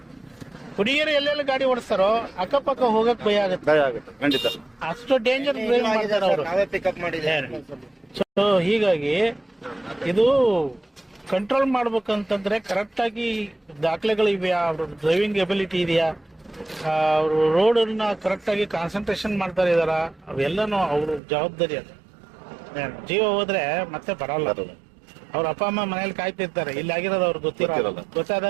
ಹುಡುಗಿಯರು ಎಲ್ಲೆಲ್ಲ ಗಾಡಿ ಓಡಿಸ್ತಾರೋ ಅಕ್ಕಪಕ್ಕ ಹೋಗಕ್ ಭಯ ಆಗುತ್ತೆ. ಖಂಡಿತ ಅಷ್ಟು ಡೇಂಜರ್ ಡ್ರೈವ್ ಮಾಡ್ತಾರೆ ಅವರು. ಪಿಕಪ್ ಮಾಡಿದ್ದಾರೆ. ಸೊ ಹೀಗಾಗಿ ಇದು ಕಂಟ್ರೋಲ್ ಮಾಡ್ಬೇಕಂತಂದ್ರೆ ಕರೆಕ್ಟ್ ಆಗಿ ದಾಖಲೆಗಳು ಇದೆಯಾ, ಅವ್ರ ಡ್ರೈವಿಂಗ್ ಎಬಿಲಿಟಿ ಇದೆಯಾ, ಅವರು ರೋಡ್ ಅನ್ನ ಕರೆಕ್ಟ್ ಆಗಿ ಕಾನ್ಸಂಟ್ರೇಷನ್ ಮಾಡ್ತಾ ಇದಾರ, ಅವೆಲ್ಲನೂ ಅವ್ರ ಜವಾಬ್ದಾರಿ. ಅದು ಜೀವ ಹೋದ್ರೆ ಮತ್ತೆ ಬರಲ್ಲ. ಅವ್ರ ಅಪ್ಪ ಅಮ್ಮ ಮನೇಲಿ ಕಾಯ್ತಿರ್ತಾರೆ, ಇಲ್ಲಿ ಆಗಿರೋದು ಅವ್ರಿಗೆ ಗೊತ್ತಿರಲ್ಲ.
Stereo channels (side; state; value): left; drops out; at 21.2 s